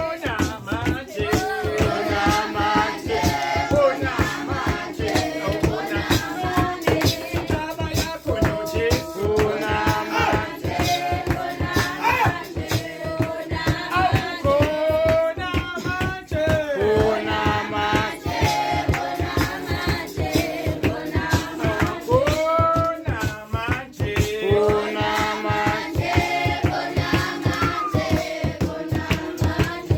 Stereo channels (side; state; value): both; identical; correlation 1.00